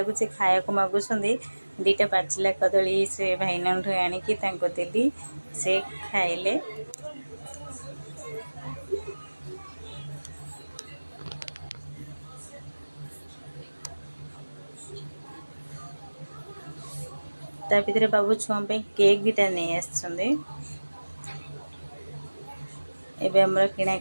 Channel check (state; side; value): inverted; both; correlation -1.00